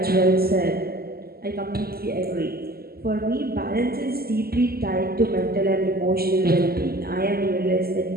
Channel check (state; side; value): late; left; 0.45 ms